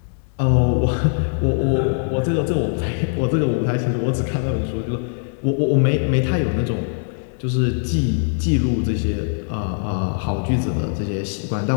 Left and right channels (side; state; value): right; silent; digital silence